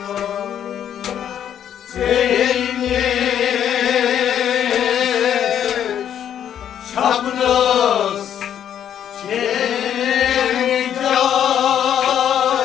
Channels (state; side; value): quieter; right; 9.7 dB